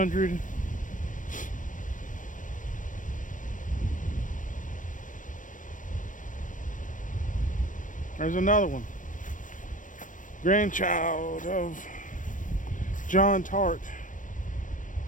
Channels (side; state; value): right; late; 0.38 ms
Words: There's another one. Grandchild of John Tart.